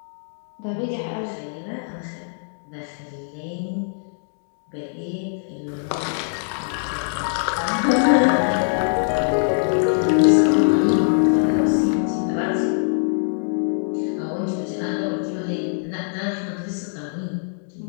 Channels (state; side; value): silent; right; digital silence